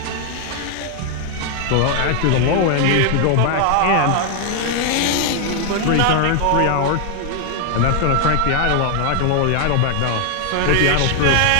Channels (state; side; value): different; both; correlation 0.00